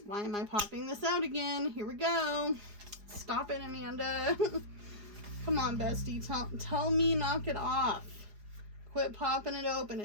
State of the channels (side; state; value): left; late; 4.9 ms